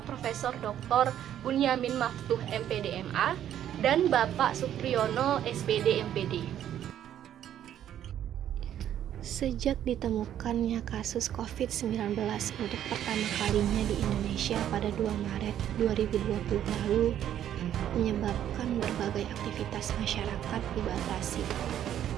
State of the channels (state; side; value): quieter; left; 10.8 dB